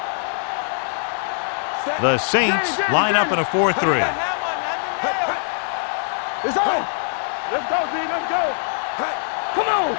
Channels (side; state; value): right; silent; digital silence